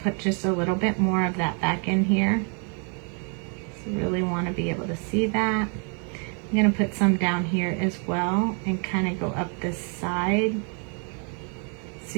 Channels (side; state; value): left; quieter; 39.4 dB